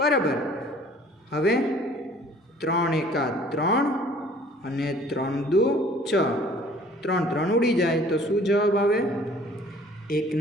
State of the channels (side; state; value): both; normal; correlation 0.53